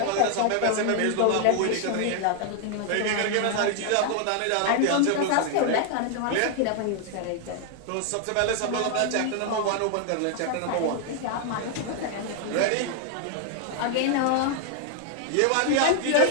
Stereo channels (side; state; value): both; different; correlation 0.00